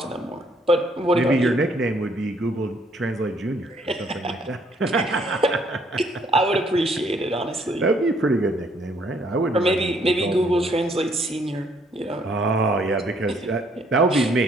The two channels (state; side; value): normal; both; correlation 0.66